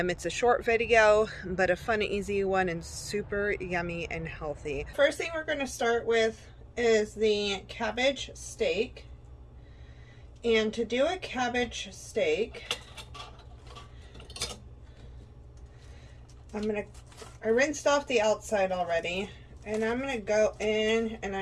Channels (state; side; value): identical; both; correlation 1.00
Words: a short video, but a fun, easy one and super yummy and healthy. First thing we're going to start with is the cabbage steak. And to do a cabbage steak, I rinsed off the outside already, and I'm going to go in and